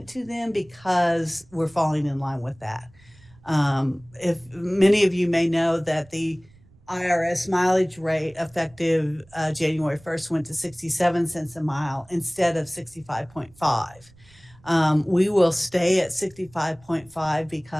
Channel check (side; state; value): right; noise; rumble, 27 dB below the sound